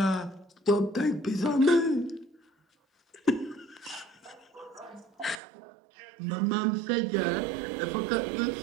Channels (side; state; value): left; drops out; at 5.4 s